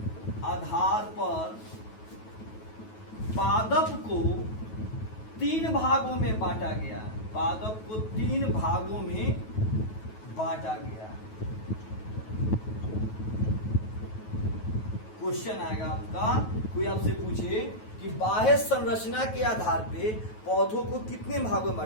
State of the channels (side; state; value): right; late; 9.3 ms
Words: आधार पर पादप को 3 भागों में बांटा गया। पादप को 3 भागों में बांटा गया। क्वेश्चन आएगा आपका, कोई आपसे पूछे कि बाह्य संरचना के आधार पे पौधों को कितने भागों में